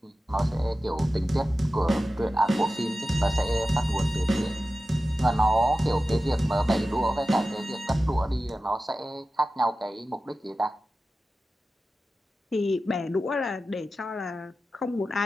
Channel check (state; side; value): normal; both; correlation 0.94